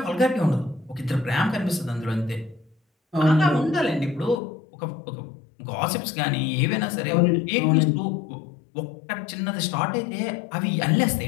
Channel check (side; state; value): right; drops out; at 4.4 s